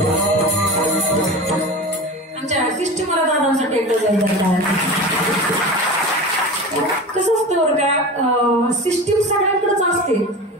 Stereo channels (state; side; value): normal; both; correlation 0.31